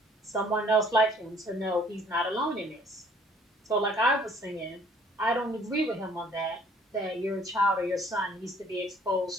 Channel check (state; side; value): normal; both; correlation 0.58